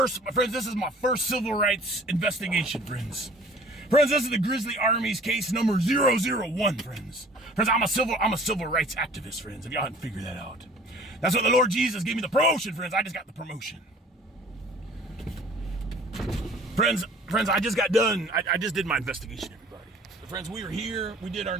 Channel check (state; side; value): normal; both; correlation 0.49